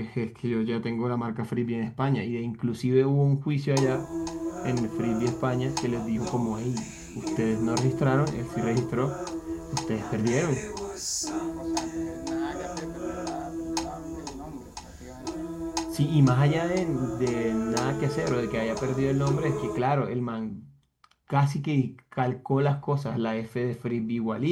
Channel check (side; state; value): both; identical; correlation 1.00